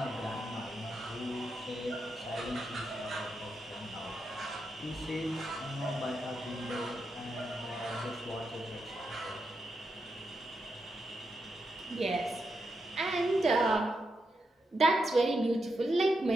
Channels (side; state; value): both; normal; correlation 0.84